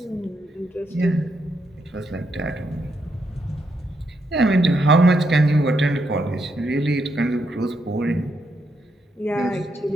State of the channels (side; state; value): both; normal; correlation 0.79